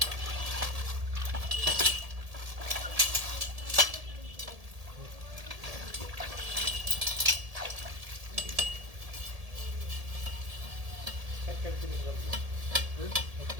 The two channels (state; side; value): late; left; 1.7 ms